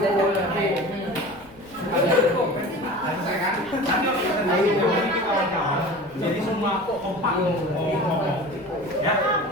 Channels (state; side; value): noise; right; rumble, 24 dB below the sound